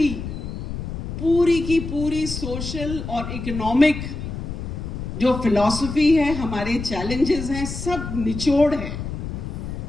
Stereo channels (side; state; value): left; noise; rumble, 6 dB below the sound